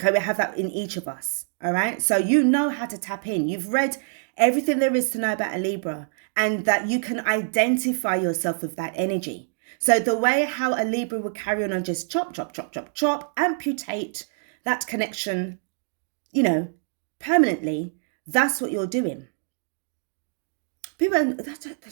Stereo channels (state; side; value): silent; left; digital silence